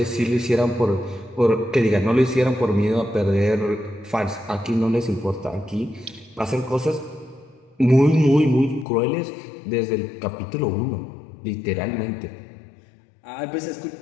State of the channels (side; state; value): right; drops out; at 8.8 s